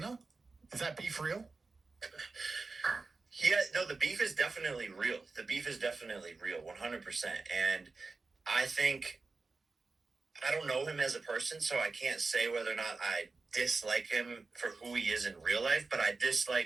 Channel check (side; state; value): left; quieter; 3.9 dB